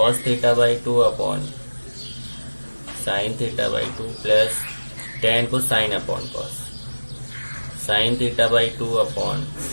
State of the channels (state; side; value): inverted; both; correlation -1.00